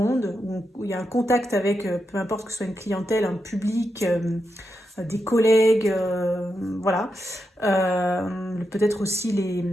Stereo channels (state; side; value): normal; both; correlation 0.86